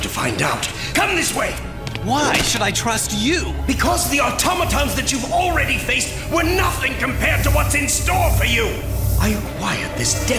find out. Come this way! Why should I trust you? Because the automatons that you've already faced were nothing compared to what's in store for you. I acquired this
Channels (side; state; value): both; identical; correlation 1.00